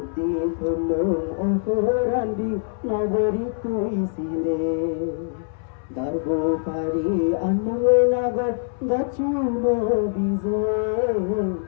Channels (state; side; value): silent; right; 63 dB below the other